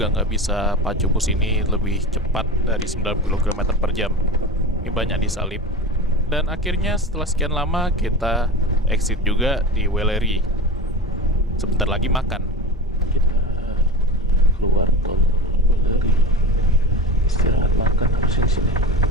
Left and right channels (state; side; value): normal; both; correlation 0.26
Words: nggak bisa pacu bus ini lebih cepat dari 90 km per jam. Ini banyak disalip. Dan akhirnya setelah sekian lama, kita exit juga di Weleri. Sebentar lagi makan. Kita keluar tol Weleri, istirahat makan harusnya di sini.